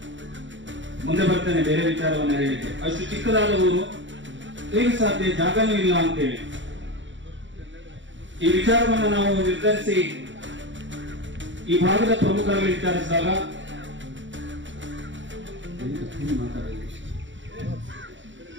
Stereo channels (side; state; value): left; late; 0.55 ms